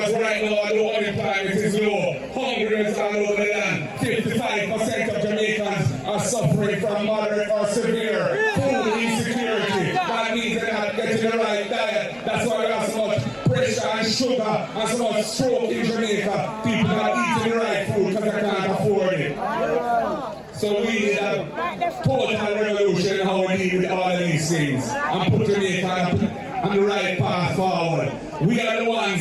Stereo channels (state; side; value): identical; both; correlation 1.00